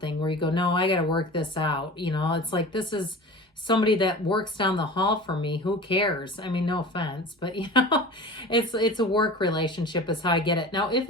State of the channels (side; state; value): both; normal; correlation 0.36